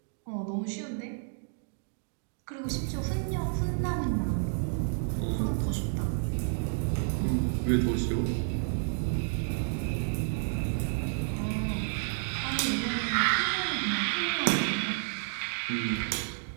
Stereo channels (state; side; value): silent; left; digital silence